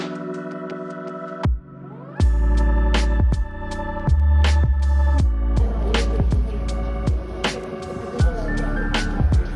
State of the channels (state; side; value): identical; both; correlation 1.00